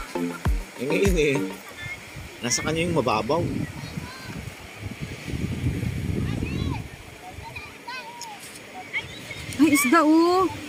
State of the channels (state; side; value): identical; both; correlation 1.00